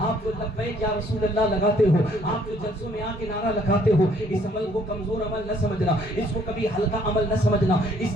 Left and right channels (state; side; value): normal; both; correlation 0.63